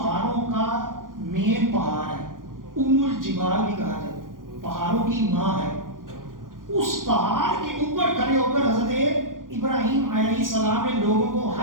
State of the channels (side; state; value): left; late; 0.90 ms